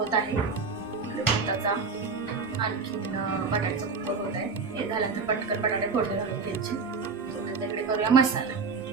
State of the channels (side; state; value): left; quieter; 4.9 dB